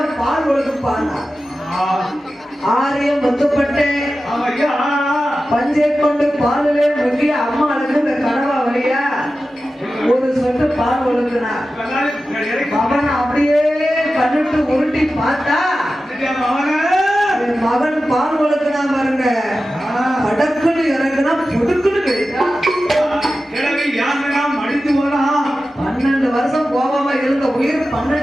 பால் கொடுப்பாங்க. ஆரியம் முத்துப்பட்டு பஞ்சை கொண்டு பாலிலே முக்கி அம்மாளுக்கு இந்த கனவா வழியா ஒரு சொட்டு பால் ஒழுக்குனா அவன் அப்படியே கண்ணுட்டு உருட்டி பார்த்தா மகன் பால் ஒழுக்குனா பாருங்க, படக்குன்னு இறங்குனா புடுக்குன்னு கிடைக்கா. 12 வருஷம் போகாம இருந்த உயிர்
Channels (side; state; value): both; normal; correlation 0.93